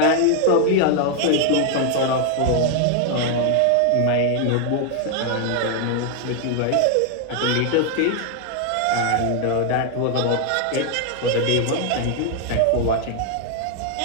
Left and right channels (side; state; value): both; different; correlation 0.00